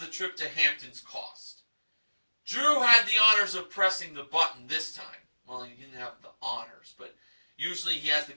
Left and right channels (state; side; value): inverted; both; correlation -1.00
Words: trip to Hamptons cost. Drew had the honors of pressing the button this time. Well, he didn't have the honors, but usually he has the